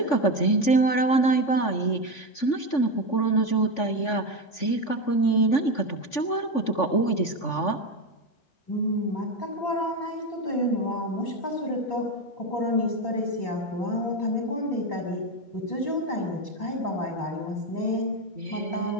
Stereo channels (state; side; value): late; right; 3.5 ms